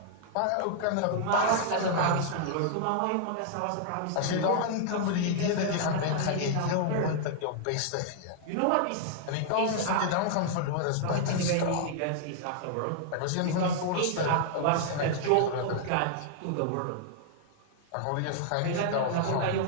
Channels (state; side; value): different; both; correlation -0.01